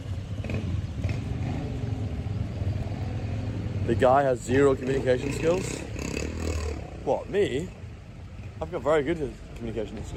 The guy has zero communication skills. What, me? I've got very good communication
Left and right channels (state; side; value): identical; both; correlation 1.00